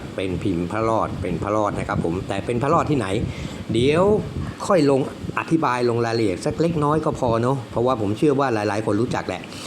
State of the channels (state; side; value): identical; both; correlation 1.00